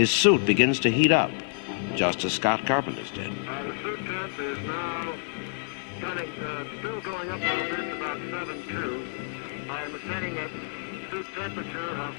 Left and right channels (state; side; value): silent; right; digital silence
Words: suit begins to heat up, just as Scott Carpenter's did. The suit temp is now still going up a little bit. It's about 7.2. I am setting at suit temperature of